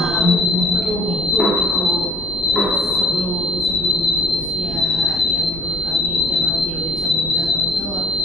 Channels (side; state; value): both; normal; correlation 0.55